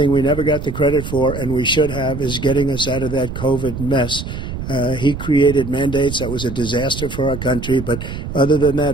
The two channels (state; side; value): noise; right; rumble, 8 dB below the sound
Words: we never got the credit for, and we should have, is getting us out of that COVID mess. He created mandates that was a disaster for our country. But other than